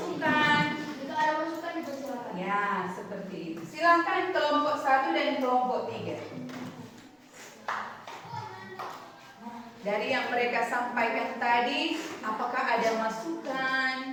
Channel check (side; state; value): both; identical; correlation 1.00